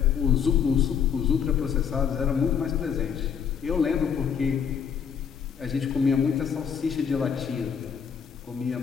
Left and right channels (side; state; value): right; quieter; 7.4 dB